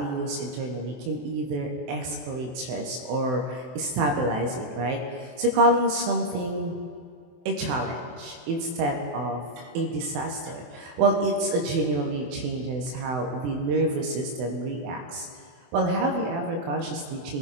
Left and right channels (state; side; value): late; left; 24 ms